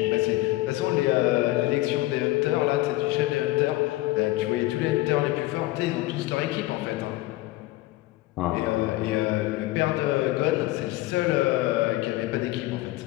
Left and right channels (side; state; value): right; quieter; 17.9 dB